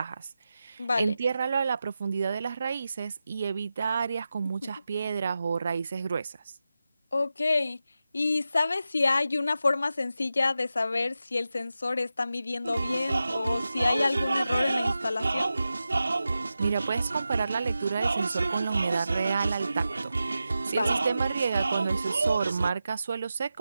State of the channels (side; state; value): both; inverted; correlation -0.91